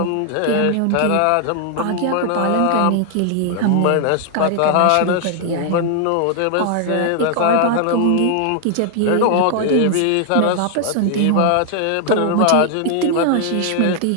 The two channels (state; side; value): different; both; correlation 0.00